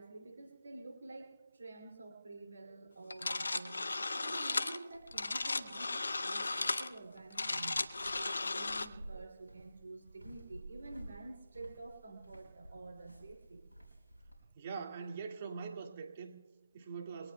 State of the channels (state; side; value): inverted; both; correlation -0.93